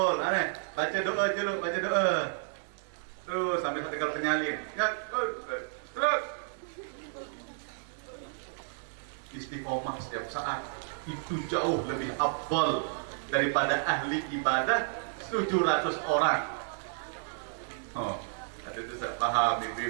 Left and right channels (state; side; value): silent; left; digital silence